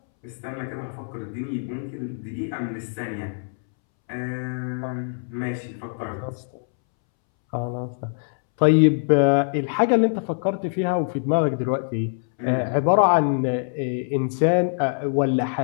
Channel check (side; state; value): right; silent; 63 dB below the other